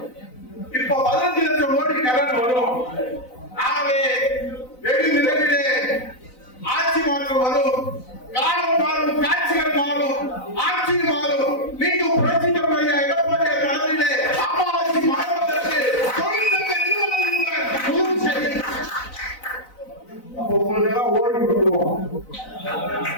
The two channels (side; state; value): right; late; 4.0 ms